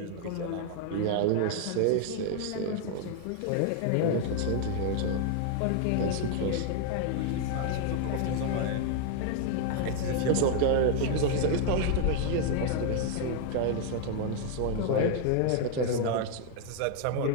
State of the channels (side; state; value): both; different; correlation 0.00